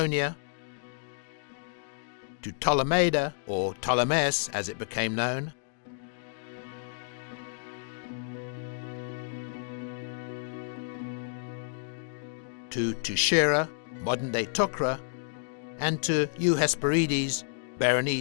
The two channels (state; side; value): silent; right; digital silence